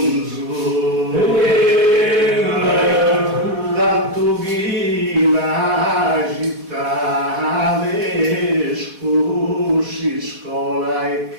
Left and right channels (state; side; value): late; left; 4.0 ms